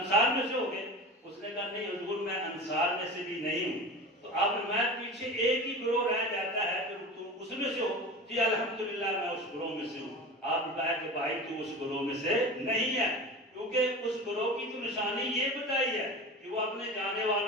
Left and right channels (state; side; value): normal; both; correlation 0.32